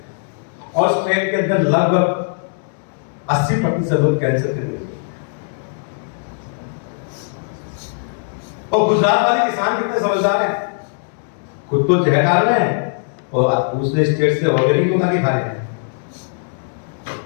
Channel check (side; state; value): right; silent; digital silence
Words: और उस ट्रेन के अंदर लगभग 80% लोग कैंसर के मरीज। और गुजरात वाले किसान कितने समझदार हैं, खुद तो जहर डाल रहे हैं और दूसरे स्टेट से ऑर्गेनिक मंगा के खा रहे हैं।